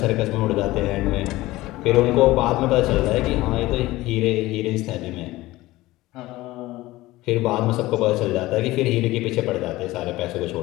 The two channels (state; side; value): quieter; right; 18.2 dB